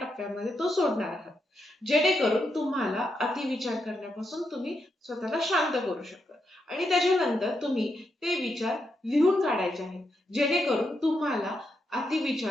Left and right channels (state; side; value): normal; both; correlation 0.83